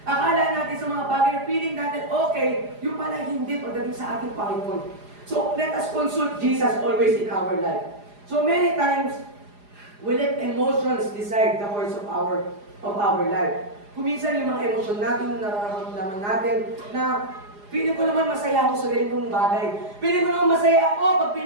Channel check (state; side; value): late; left; 4.9 ms